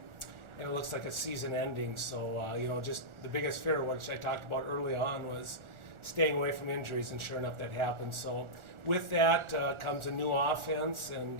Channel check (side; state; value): left; late; 1.4 ms